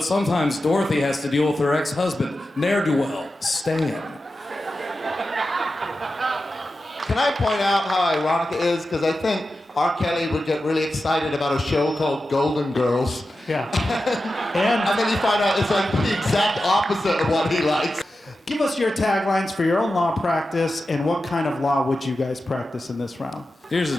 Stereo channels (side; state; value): both; normal; correlation 0.92